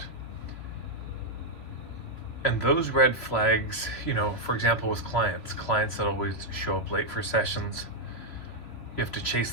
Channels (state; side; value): late; right; 2.9 ms